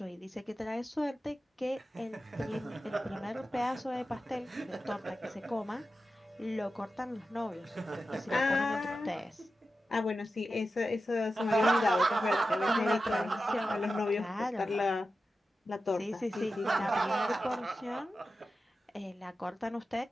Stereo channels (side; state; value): both; normal; correlation 0.92